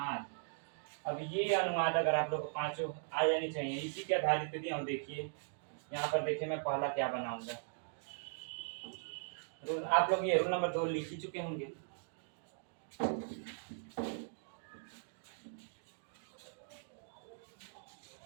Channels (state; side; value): silent; left; digital silence